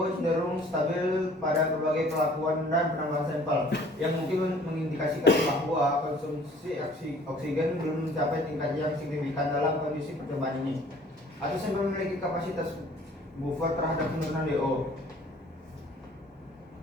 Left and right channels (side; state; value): both; normal; correlation 0.54